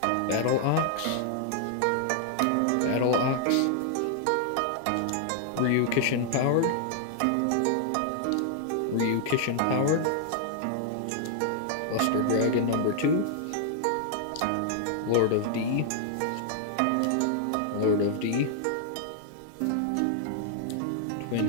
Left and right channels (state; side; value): different; both; correlation 0.00